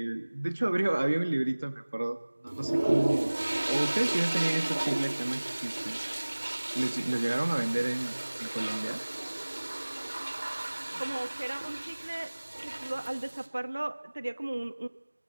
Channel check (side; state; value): both; inverted; correlation -1.00